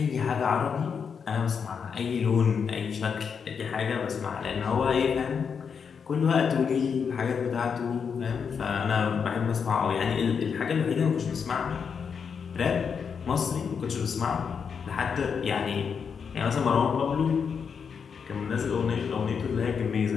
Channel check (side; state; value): right; quieter; 6.4 dB